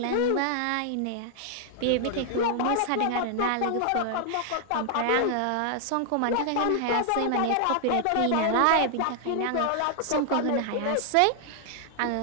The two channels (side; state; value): both; different; correlation 0.00